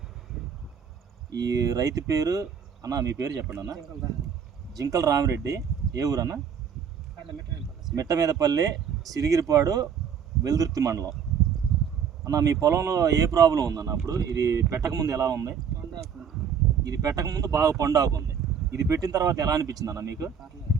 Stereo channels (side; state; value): left; quieter; 7.3 dB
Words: ఈ రైతు పేరు అన్న, మీ పేరు చెప్పండి అన్న. జింకల రామిరెడ్డి. ఏ ఊరు అన్న? మిట్టమీదపల్లి, సిరిగిరిపాడు, వెల్దుర్తి మండలం. అన్న, మీ పొలంలో ఏ ప్రాబ్లం ఉందన్న? అప్పుడు ఇది పెట్టకముందు ఎలా ఉంది? ఇది పెట్టకముందు బాగా పండాకు ఉంది. ఇది పెట్టిన తర్వాత ఎలా అనిపించింది అన్న మీకు?